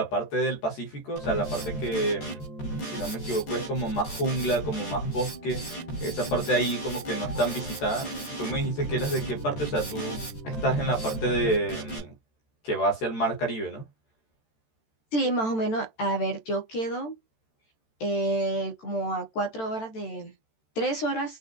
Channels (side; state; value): right; late; 13 ms